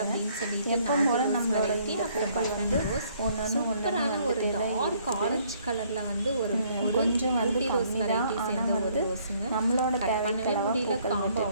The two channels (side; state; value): both; inverted; correlation -0.65